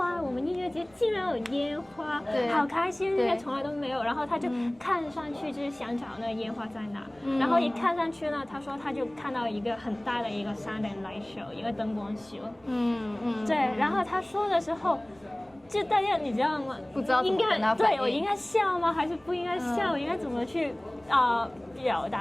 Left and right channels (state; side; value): noise; right; rumble, 30 dB below the sound